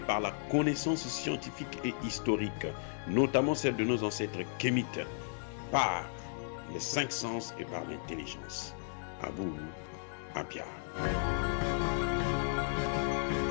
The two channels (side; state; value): right; silent; digital silence